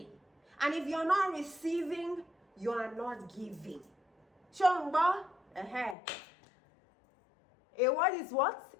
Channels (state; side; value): drops out; right; at 6.0 s